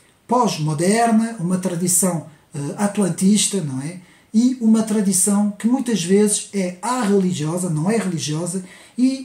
pós-moderna, uma tradição atlantista, não é? E uma tradição que muitas vezes é religiosa, não é religiosa,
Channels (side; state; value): both; identical; correlation 1.00